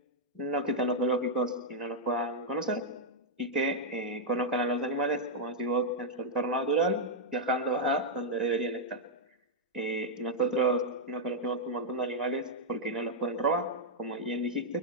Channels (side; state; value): both; normal; correlation -0.04